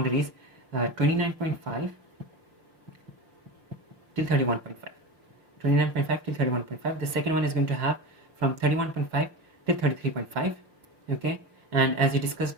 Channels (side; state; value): left; late; 6.1 ms